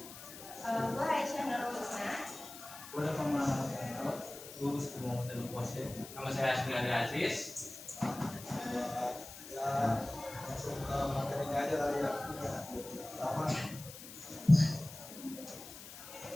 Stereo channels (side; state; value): left; noise; hiss, 14 dB below the sound